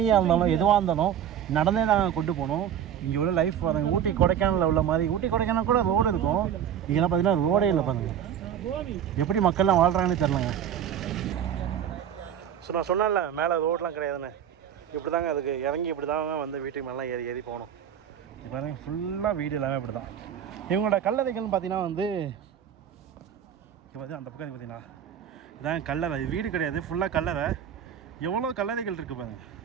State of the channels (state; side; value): quieter; left; 9.3 dB